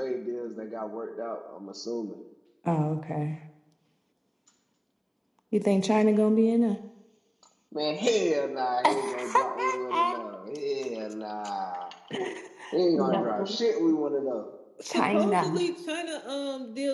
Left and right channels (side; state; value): both; identical; correlation 1.00